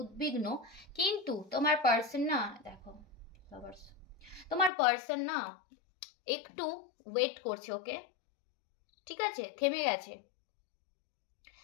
উদ্বিগ্ন, কিন্তু তোমার পার্সন না, দেখো তোমার পার্সন না একটু ওয়েট করছে, ওকে? ঠিক আছে, থেমে গেছে।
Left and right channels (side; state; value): right; drops out; at 4.7 s